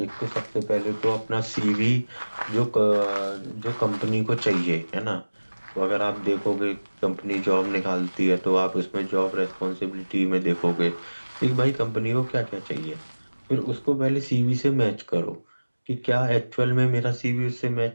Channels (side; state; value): both; inverted; correlation -1.00